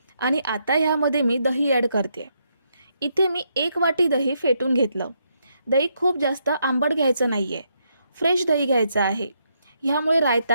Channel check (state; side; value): inverted; both; correlation -0.78